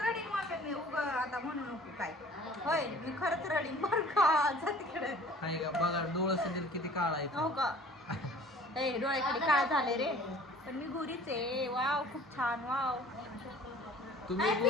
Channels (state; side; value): normal; both; correlation 0.49